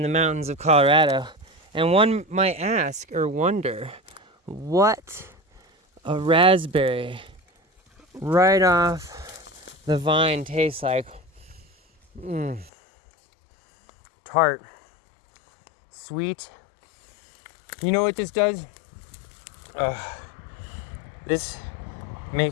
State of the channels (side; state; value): right; drops out; at 12.7 s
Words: the mountains of Colorado. And one might ask or wonder what a raspberry right off the vine tastes like. Tart, sweet. You know what this does? This